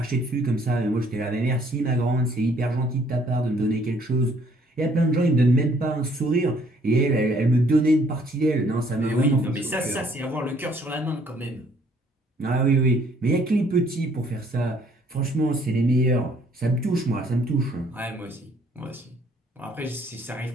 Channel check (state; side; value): normal; both; correlation 0.63